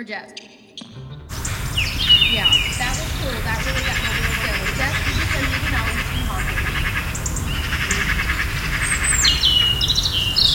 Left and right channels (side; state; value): both; identical; correlation 1.00